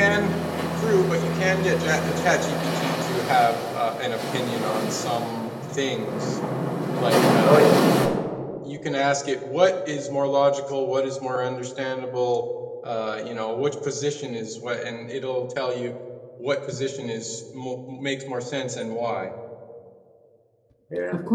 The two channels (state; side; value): identical; both; correlation 1.00